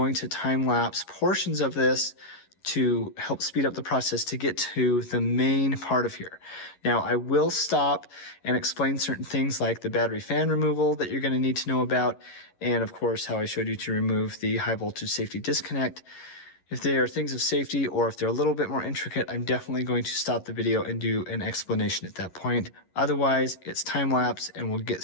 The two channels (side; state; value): right; late; 11 ms